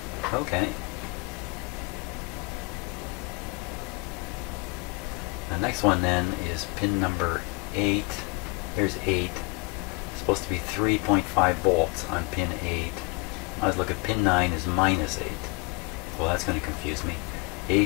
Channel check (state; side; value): quieter; right; 28.6 dB